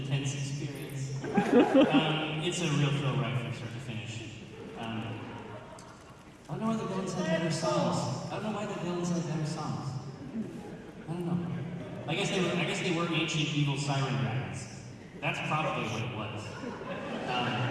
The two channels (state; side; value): identical; both; correlation 1.00